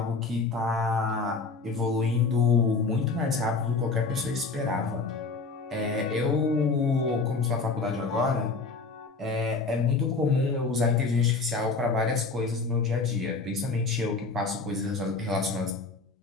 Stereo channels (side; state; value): right; quieter; 4.1 dB